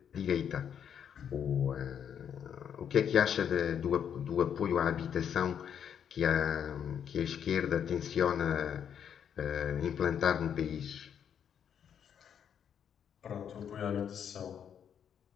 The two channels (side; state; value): right; quieter; 8.4 dB